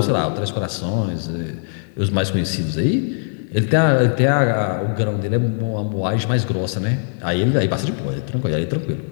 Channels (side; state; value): right; silent; 65 dB below the other